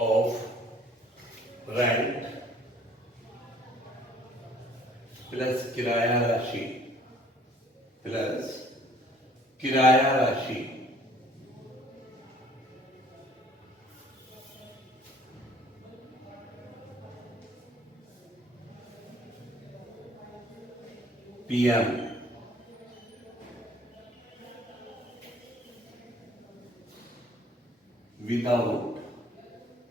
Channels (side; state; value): both; normal; correlation 0.57